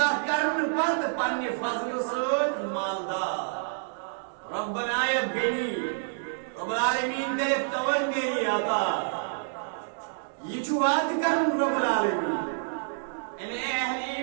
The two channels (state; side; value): silent; left; digital silence